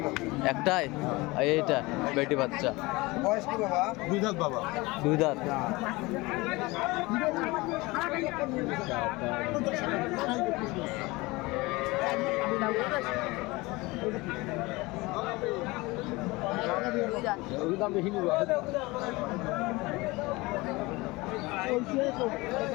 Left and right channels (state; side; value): quieter; right; 22.6 dB